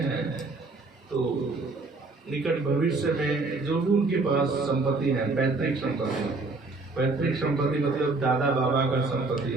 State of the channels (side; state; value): left; quieter; 3.5 dB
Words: हैं, तो निकट भविष्य में जो भी उनके पास संपत्ति है, पैतृक संपत्ति मतलब दादा बाबा का संपत्ति